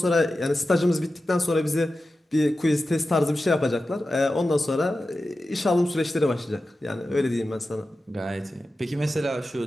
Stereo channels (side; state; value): both; normal; correlation 0.93